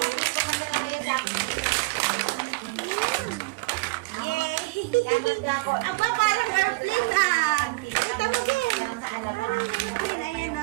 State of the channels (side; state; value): left; quieter; 24.4 dB